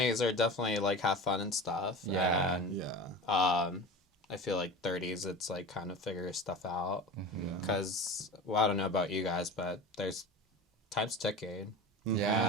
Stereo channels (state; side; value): normal; both; correlation 0.32